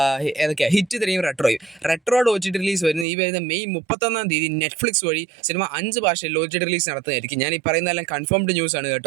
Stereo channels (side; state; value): left; drops out; at 3.1 s